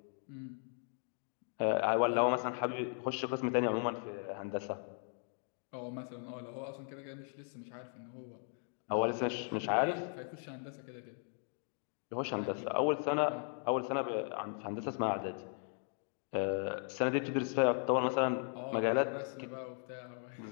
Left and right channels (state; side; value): silent; right; 53 dB below the other